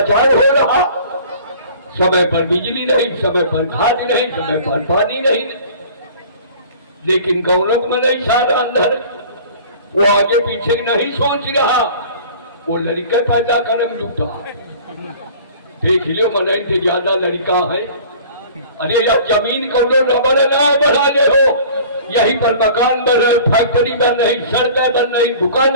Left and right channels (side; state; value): both; inverted; correlation -0.46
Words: हो रहा। समय पर बिजली नहीं, समय पर खाद नहीं, समय पर पानी नहीं। लेकिन गौरव में नहीं सारा अंदर, वो आगे पीछे नहीं सोच रहा, वो लड़का पैदा करम जुटा। देख लो मन से ज्यादा लड़का है। अरे यार जमीन को रबड़ ना बढ़ा दे हो, यहीं पर मकान बन रहे, फैक्ट्री बन रही, सड़कें बन रही,